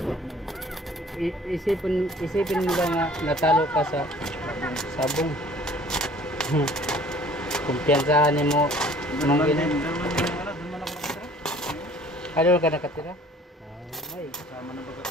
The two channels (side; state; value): both; normal; correlation 0.52